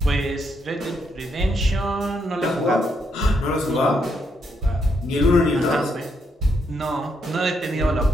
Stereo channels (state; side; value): normal; both; correlation 0.77